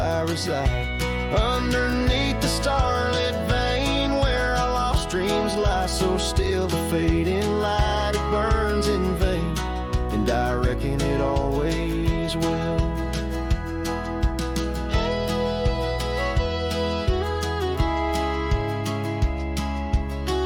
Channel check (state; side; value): identical; both; correlation 1.00